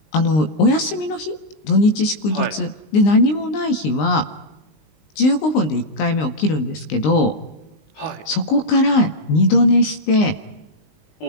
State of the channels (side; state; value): right; late; 19 ms